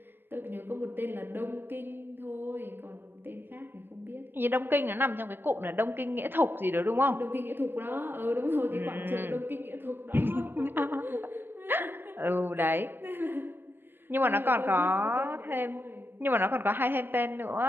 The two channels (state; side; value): late; left; 0.098 ms